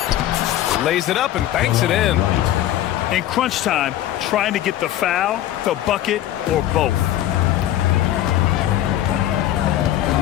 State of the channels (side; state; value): right; quieter; 12.9 dB